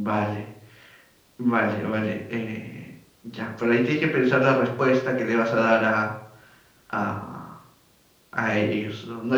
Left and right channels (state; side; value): identical; both; correlation 1.00